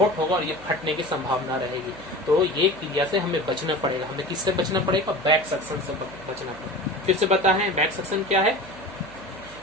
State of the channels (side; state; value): right; noise; hum, 21 dB below the sound